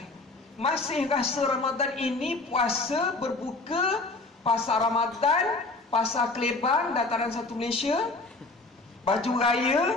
masih rasa Ramadan ini puasa, berbuka, pasar Ramadan, pasar Kelebang, dataran satu Malaysia, baju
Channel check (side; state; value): right; quieter; 3.4 dB